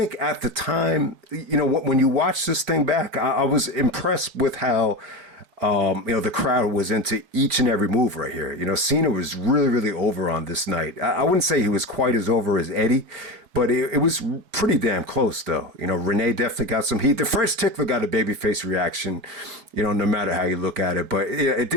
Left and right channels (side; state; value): left; late; 4.7 ms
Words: at the time, when you watch this thing back, I was impressed with how, the crowd was into each and every move right here. Cena was really, really over on this night. I wouldn't say he was quite as over as Eddie, but it was pretty damn close, though. Renee definitely got some heat. The French Tickler got a babyface reaction, no matter how you look at it. But it